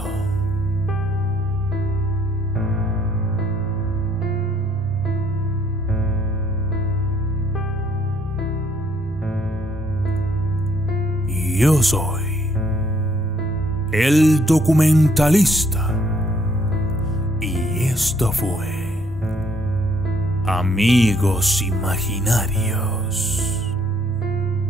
yo soy el documentalista. Y esto fue Amigos Imaginarios.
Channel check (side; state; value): both; normal; correlation 0.66